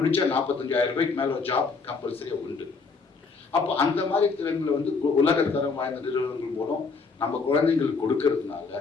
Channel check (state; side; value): quieter; right; 4.6 dB